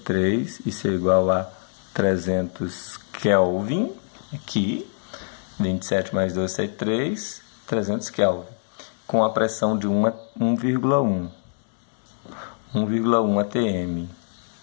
isso é igual a 300 Kelvin, aqui, 27 mais 273, 300 Kelvin, com a pressão de 1,1 atm.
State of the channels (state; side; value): silent; right; digital silence